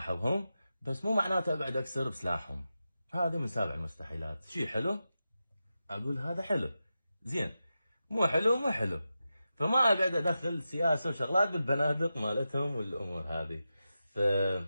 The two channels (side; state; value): both; inverted; correlation -0.91